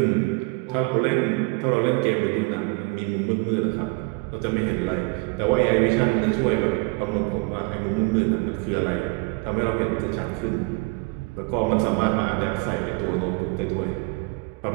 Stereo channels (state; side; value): quieter; left; 29.3 dB